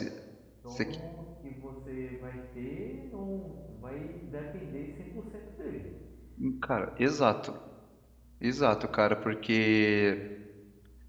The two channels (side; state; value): both; identical; correlation 1.00